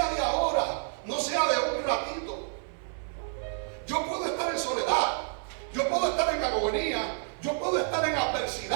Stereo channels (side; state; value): left; silent; 58 dB below the other